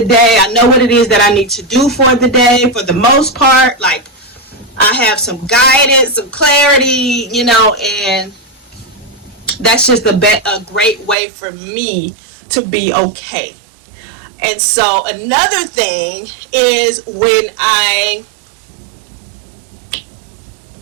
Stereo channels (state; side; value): drops out; left; at 11.2 s